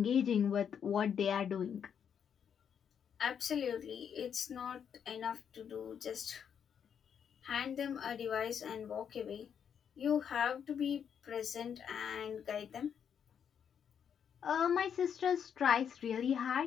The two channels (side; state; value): right; quieter; 7.9 dB